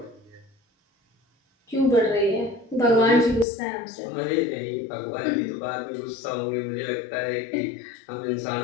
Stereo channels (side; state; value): right; drops out; at 3.5 s